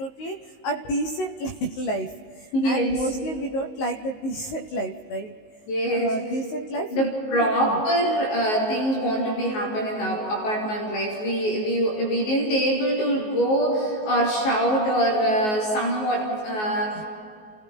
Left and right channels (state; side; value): late; right; 19 ms